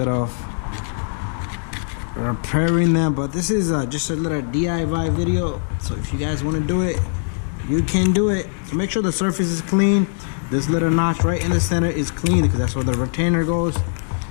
of repairing them, but this is just a little DIY video, so if you guys want to do it, you can do it. So make sure the surface is clean. This little notch right in the center is clean because that's where the retainer goes.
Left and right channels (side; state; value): right; silent; digital silence